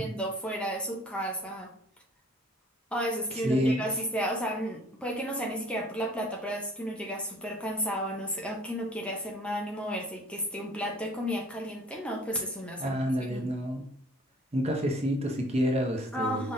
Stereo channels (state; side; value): normal; both; correlation 0.53